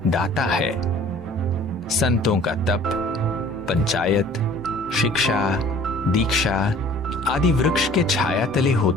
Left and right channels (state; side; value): normal; both; correlation 0.51